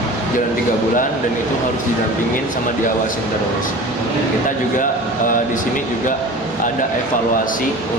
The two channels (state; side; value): normal; both; correlation 0.37